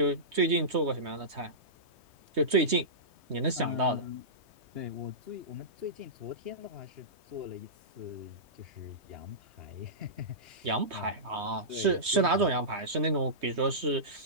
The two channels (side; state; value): left; late; 3.2 ms